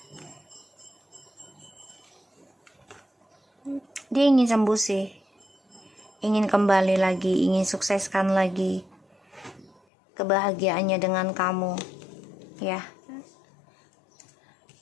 Dia ingin sembuh sih, ingin kembali lagi, ingin sukseskan lagi kebahagiaannya dengan kamu ya.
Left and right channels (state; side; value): drops out; right; at 9.8 s